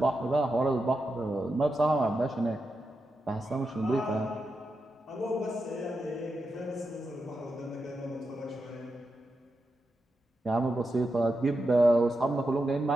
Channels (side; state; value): both; normal; correlation 0.87